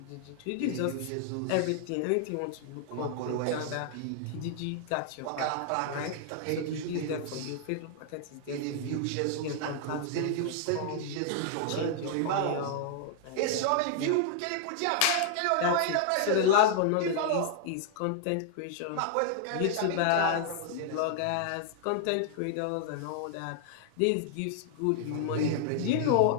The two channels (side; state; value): both; different; correlation -0.01